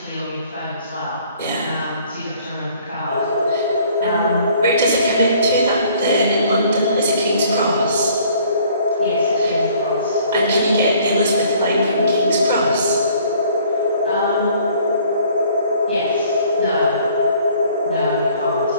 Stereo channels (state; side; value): inverted; both; correlation -0.57